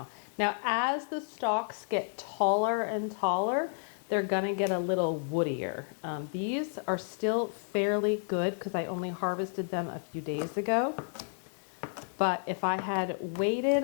Now, as the stalks get taller and taller, they're going to get a little woodier. These are still fairly good because I only harvested them a few days ago. But if I had waited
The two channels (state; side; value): silent; right; 57 dB below the other